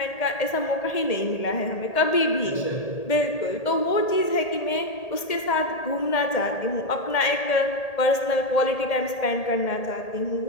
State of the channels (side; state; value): right; late; 1.8 ms